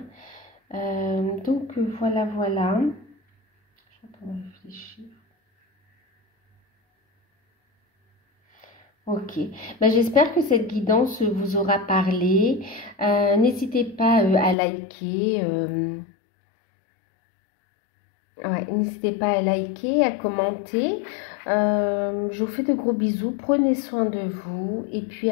Hein. Donc voilà, voilà. Je suis en train de réfléchir. Ok, j'espère que cette guidance vous aura parlé. N'hésitez pas à liker. N'hésitez pas à liker, à commenter. Je vous fais de gros bisous. Prenez soin de vous et puis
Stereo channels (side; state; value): right; drops out; at 14.6 s